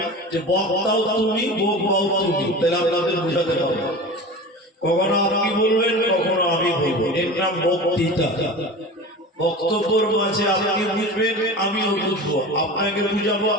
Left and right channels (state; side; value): normal; both; correlation 0.33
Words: যে বক্তাও তুমি বক্তাও তুমি, তাহলে আপনাদের বুঝাতে পারবো। কখনো আপনি বলবেন, কখনো আমি বলবো, এর নাম বক্তৃতা। বক্তব্যের মাঝে আপনি বুঝবেন, আমিও বুঝবো, আপনাকে বুঝাবো,